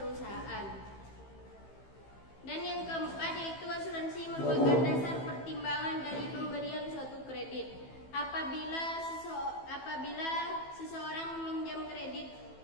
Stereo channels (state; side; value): late; right; 15 ms